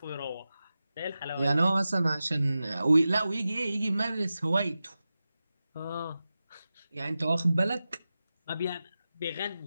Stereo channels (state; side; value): inverted; both; correlation -0.94